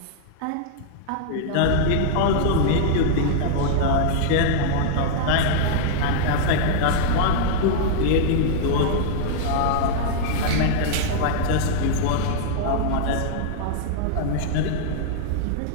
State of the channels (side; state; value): both; different; correlation -0.01